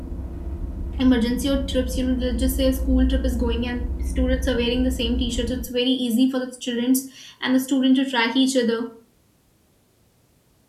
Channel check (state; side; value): identical; both; correlation 1.00